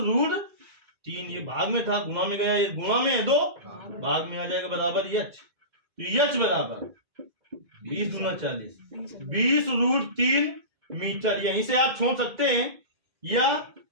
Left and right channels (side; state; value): left; late; 2.1 ms